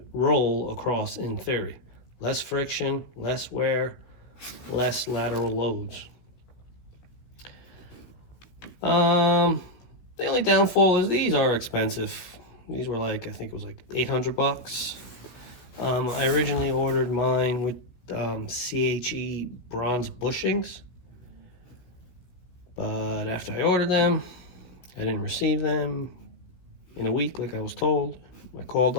roll across in theory. Less friction, less wear, less lateral loads. The only downfall is these are expensive. These were like, I think it was like 800 bucks. I originally ordered mine with CHE bronze bushings, but after I ordered them, I didn't receive them in a week like I was told. I called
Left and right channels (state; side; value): late; right; 16 ms